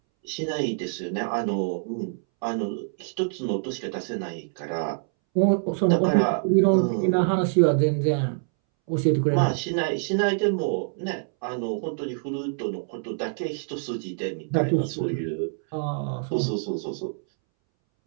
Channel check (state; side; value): silent; left; 61 dB below the other